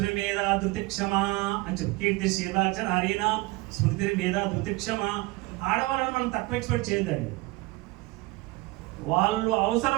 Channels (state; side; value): quieter; left; 22.1 dB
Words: మీద ధృతిక్షమ అని చెప్పి కీర్తి శీలాచన హరినా స్మృతి మీద ధృతిక్షమ. ఆడవాళ్ళను మనం తక్కువ ఎక్స్పెక్ట్ చేయొద్దండి. వాళ్ళు